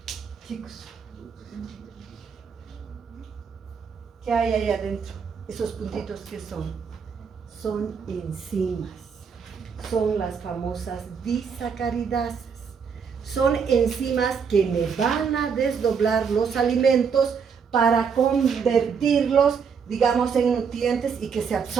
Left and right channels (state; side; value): quieter; left; 6.3 dB